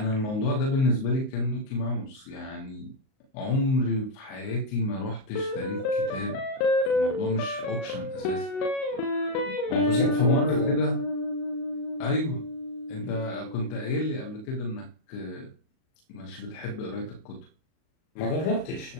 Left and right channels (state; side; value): late; right; 38 ms